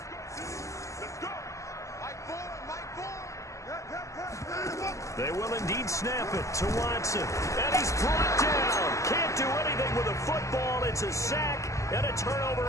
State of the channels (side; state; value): right; late; 0.15 ms